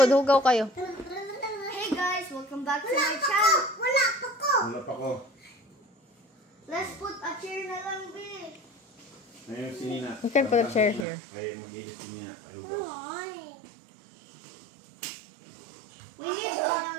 hugaw kayo. Hey guys, welcome back to my channel. Wala pa ko. Let's put a chair na lang, B. Ayun, si Nina. You can put a chair here. Ay, mag-ilis si Nina. Ayun ba? We need a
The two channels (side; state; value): left; drops out; at 11.1 s